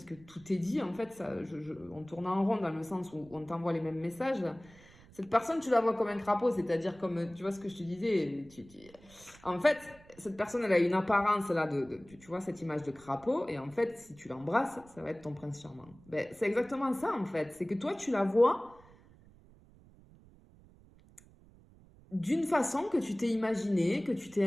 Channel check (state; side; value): noise; right; rumble, 25 dB below the sound